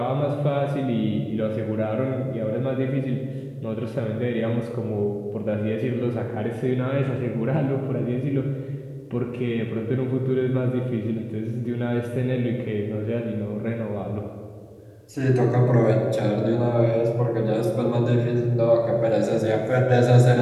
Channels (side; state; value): both; identical; correlation 1.00